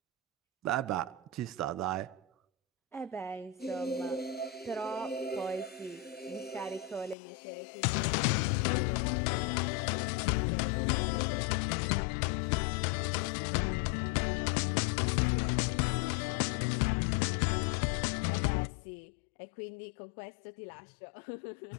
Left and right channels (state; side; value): drops out; right; at 7.2 s